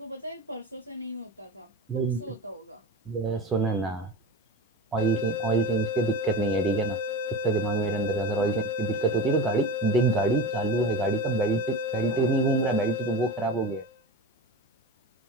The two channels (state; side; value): normal; both; correlation 0.28